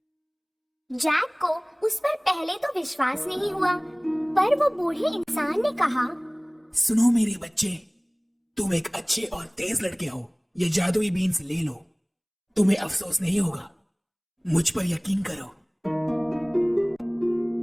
जैक को उस पर पहले तो विश्वास नहीं हुआ, पर वो बूढ़े इंसान ने कहा, सुनो मेरे बच्चे, तुम एक अच्छे और तेज लड़के हो, ये जादुई बीन्स ले लो, तुम्हें अफसोस नहीं होगा, मुझ पर यकीन करो।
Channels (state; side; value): identical; both; correlation 1.00